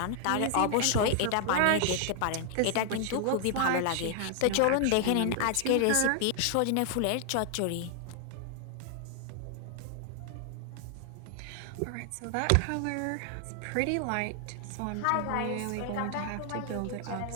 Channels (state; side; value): different; both; correlation 0.00